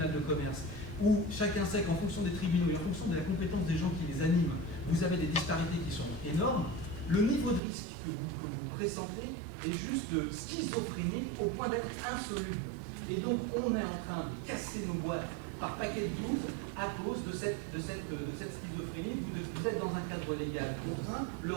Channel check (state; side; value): drops out; left; at 7.6 s